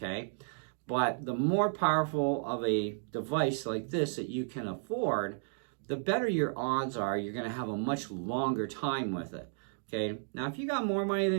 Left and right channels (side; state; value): left; silent; digital silence